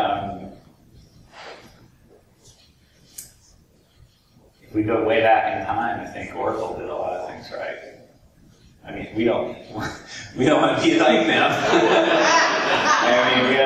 if we go way back in time, I think Oracle did a lot of things right. I mean, we don't want to be like them. I mean, we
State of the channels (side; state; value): both; identical; correlation 1.00